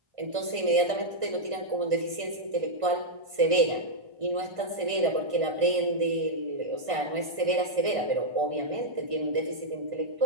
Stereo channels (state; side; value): late; left; 1.5 ms